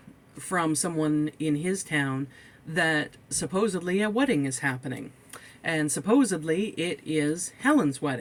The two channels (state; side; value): identical; both; correlation 1.00